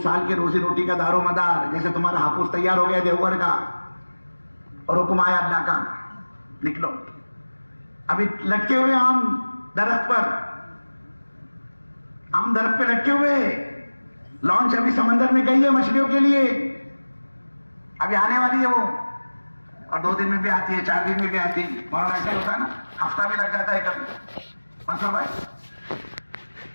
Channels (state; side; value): inverted; both; correlation -1.00